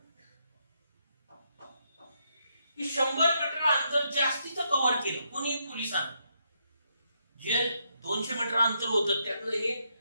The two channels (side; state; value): both; inverted; correlation -0.78